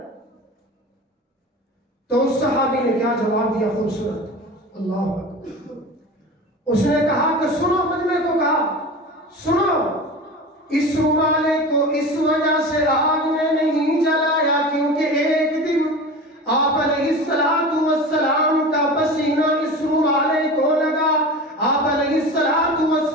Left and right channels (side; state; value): both; normal; correlation 0.33